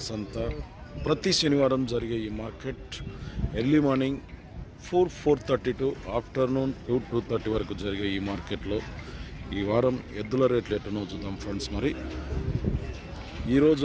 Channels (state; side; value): identical; both; correlation 1.00